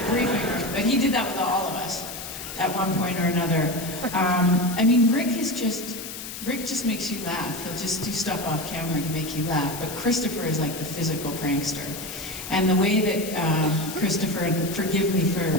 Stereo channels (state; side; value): noise; left; hiss, 9 dB below the sound